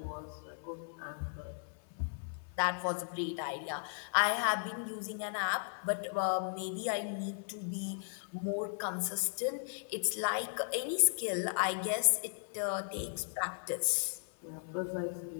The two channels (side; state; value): right; silent; 54 dB below the other